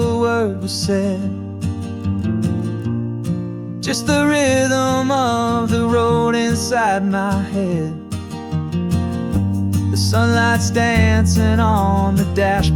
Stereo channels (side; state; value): both; identical; correlation 1.00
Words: word was said. Just the rhythm of the road inside my head. The sunlight's dancing on the